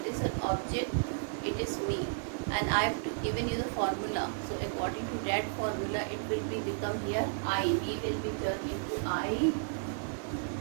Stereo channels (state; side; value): silent; left; digital silence